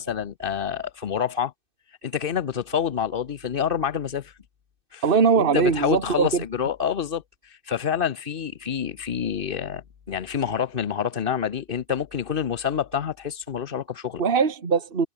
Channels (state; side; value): late; left; 2.6 ms